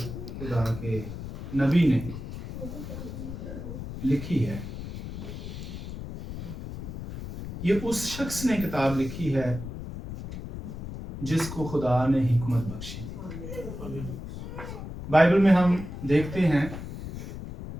खुदा के नबी ने लिखी है। ये उस शख्स ने किताब लिखी है जिसको खुदा ने हिकमत बख्शी थी। बाइबल में हम देखते हैं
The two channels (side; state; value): left; noise; rumble, 9 dB below the sound